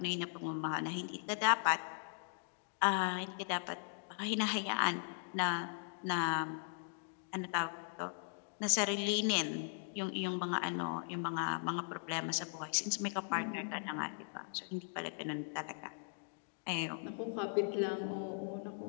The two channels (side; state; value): right; silent; digital silence